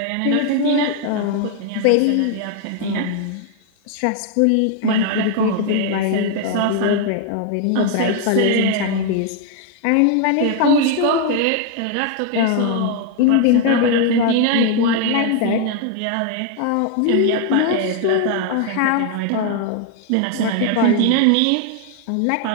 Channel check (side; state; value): both; different; correlation 0.00